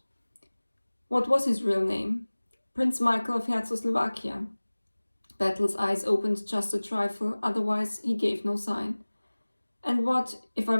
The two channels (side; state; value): both; inverted; correlation -1.00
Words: "What was his real name?" "Prince Michael of Czechoslovakia." Battle's eyes opened just a trifle, otherwise he gave no sign. "And what, if I